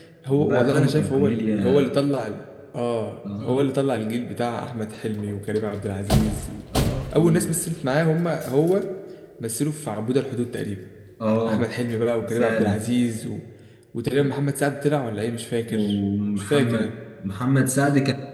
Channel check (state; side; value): identical; both; correlation 1.00